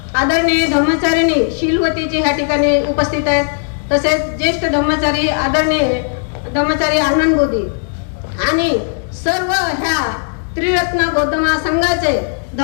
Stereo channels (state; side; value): silent; right; digital silence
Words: आदरणीय धम्मचारिणी शीलवतीजी ह्या ठिकाणी उपस्थित आहेत. तसेच ज्येष्ठ धम्मचारी आदरणीय धम्मचारी आनंद बोधी आणि सर्व ह्या त्रिरत्न बौद्ध महासंघाचे